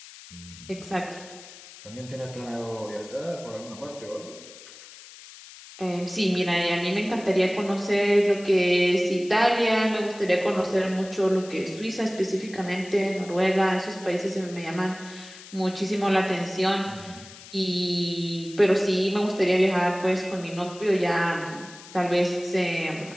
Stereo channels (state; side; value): noise; left; hiss, 18 dB below the sound